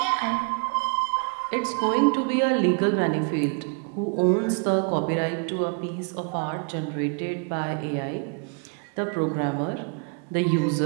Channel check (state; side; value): quieter; left; 36.8 dB